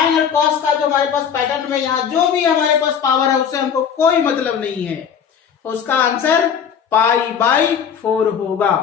और कॉस का जो हमारे पास पैटर्न में यहाँ जो भी हमारे पास पावर है उससे हमको कोई मतलब नहीं है, उसका आंसर पाई बाय 4 होगा।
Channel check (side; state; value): right; quieter; 7.6 dB